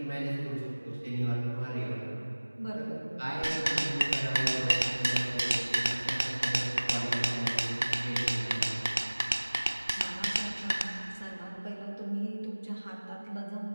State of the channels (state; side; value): inverted; both; correlation -1.00